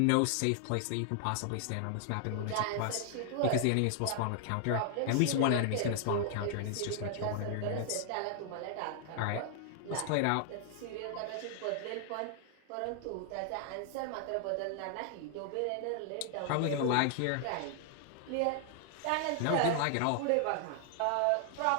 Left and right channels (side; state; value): both; different; correlation 0.00